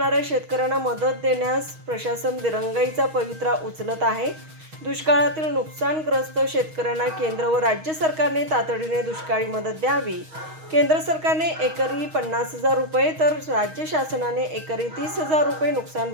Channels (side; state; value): left; late; 6.3 ms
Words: शेतकऱ्यांना मदत देण्यास प्रशासन दिरंगाईचा पवित्रा उचलत आहे। दुष्काळातील नुकसानग्रस्त शेतकऱ्यांना केंद्र व राज्य सरकारने तातडीने दुष्काळी मदत द्यावी। केंद्र सरकारने एकरी 50,000 रुपये तर राज्य शासनाने एकरी 30,000 रुपये नुकसान